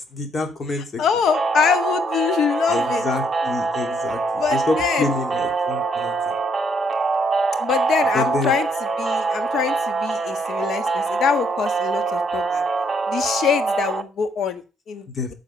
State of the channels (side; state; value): both; normal; correlation 0.70